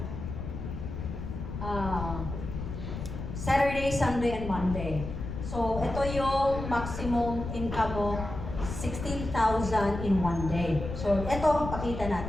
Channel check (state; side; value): noise; left; rumble, 7 dB below the sound